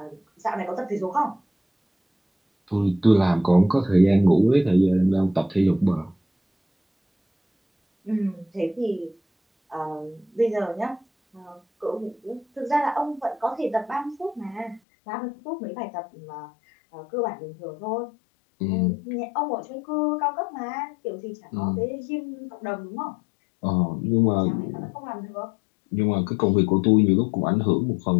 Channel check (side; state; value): right; drops out; at 14.8 s